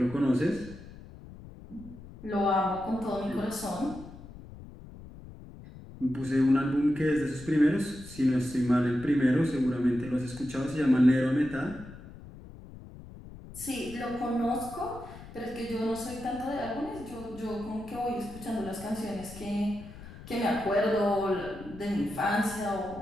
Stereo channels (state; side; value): noise; left; rumble, 16 dB below the sound